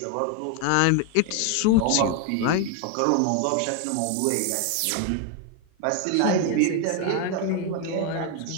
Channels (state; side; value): different; both; correlation 0.01